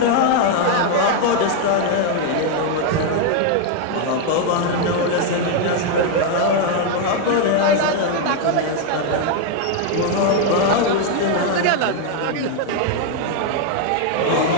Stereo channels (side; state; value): both; different; correlation 0.01